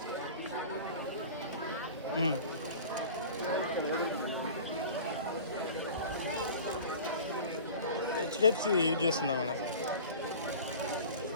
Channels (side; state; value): both; inverted; correlation -0.39